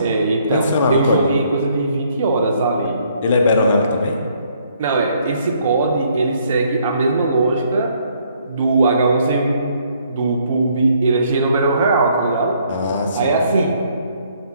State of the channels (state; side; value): inverted; both; correlation -0.67